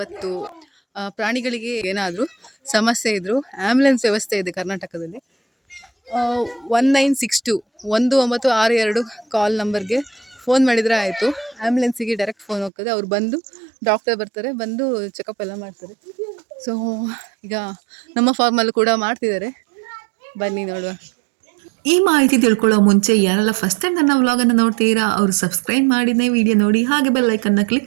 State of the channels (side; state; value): left; drops out; at 12.7 s